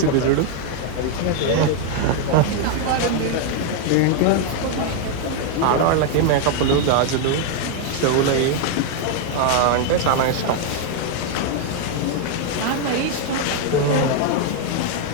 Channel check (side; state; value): both; different; correlation 0.00